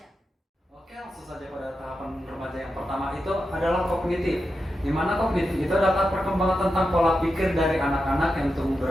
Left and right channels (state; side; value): normal; both; correlation 0.89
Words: Oke, langsung saja pada tahapan remaja yang pertama itu adalah kognitif. Di mana kognitif itu adalah perkembangan tentang pola pikir dari anak-anak yang tumbuh